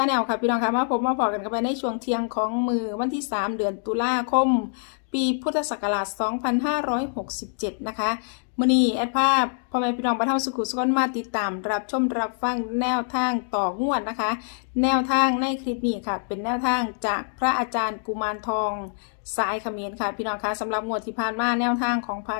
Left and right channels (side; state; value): right; silent; digital silence